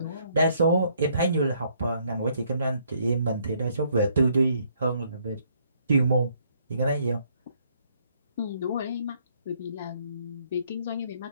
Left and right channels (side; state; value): both; inverted; correlation -0.68